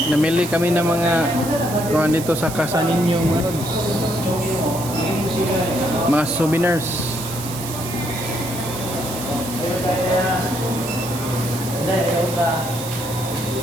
Namili kami ng mga kuhan dito sa Casa Niño, mga lods. Mga souvenirs.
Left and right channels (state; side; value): noise; right; hiss, 11 dB below the sound